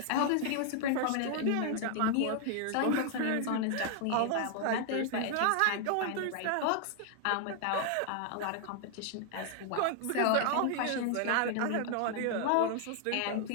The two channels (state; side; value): different; both; correlation 0.00